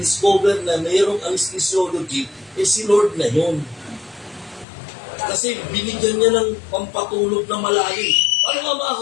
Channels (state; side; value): drops out; right; at 4.7 s